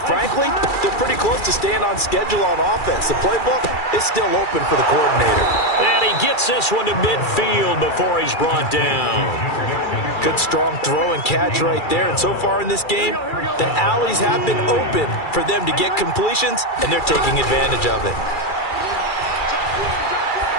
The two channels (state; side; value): late; right; 2.3 ms